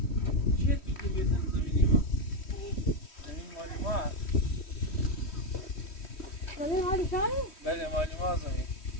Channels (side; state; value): right; late; 3.1 ms